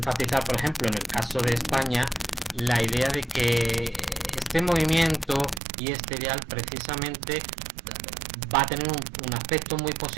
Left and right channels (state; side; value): drops out; left; at 5.6 s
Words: por ejemplo, en el caso de España, la idea de que este movimiento y este ideal precisamente va a tener un aspecto muy